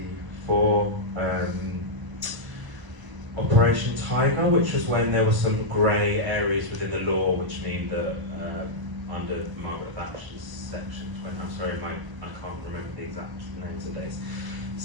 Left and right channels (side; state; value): left; late; 1.0 ms